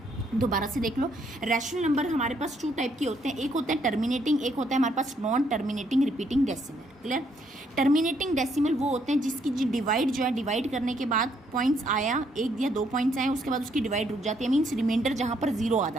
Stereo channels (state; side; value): normal; both; correlation 0.71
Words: दोबारा से देख लो, रैशनल नंबर हमारे पास 2 टाइप के होते हैं, एक होता है टर्मिनेटिंग, एक होता है हमारे पास non terminating repeating decimal. Clear? Terminating decimal वो होते हैं जिसकी जो डिवाइड जो है, डिवाइड करने के बाद पॉइंट्स आया, 1 या 2 पॉइंट्स आए, उसके बाद उसकी डिवाइड रुक जाती है, मीन्स रिमाइंडर जहाँ पर 0 आ